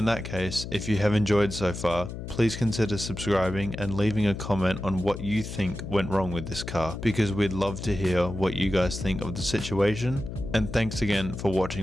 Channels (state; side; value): noise; left; hum, 8 dB below the sound